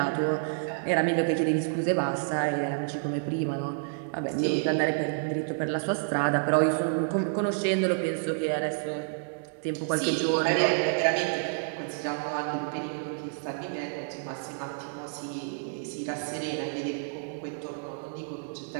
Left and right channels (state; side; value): silent; left; digital silence